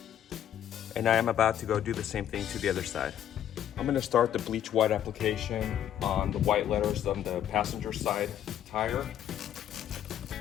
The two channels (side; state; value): right; quieter; 10.6 dB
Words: And I am about to go do the same thing to the other side. I'm gonna start the Bleche-White application on the white letters on the passenger side tire.